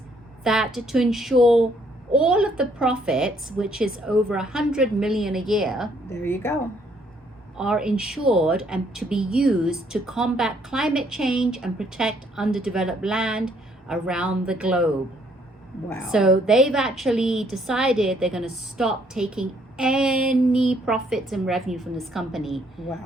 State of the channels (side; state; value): both; normal; correlation 0.67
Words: that to ensure all of the profits, which is over 100 million a year, There you go. are insured and to be used to combat climate change and protect underdeveloped land around the globe. Wow. So they've actually decided they're going to stop taking any profits and revenue from this company.